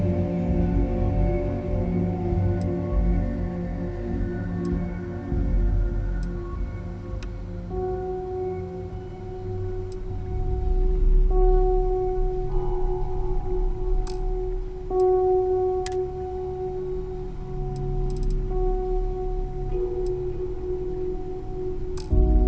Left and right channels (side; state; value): both; identical; correlation 1.00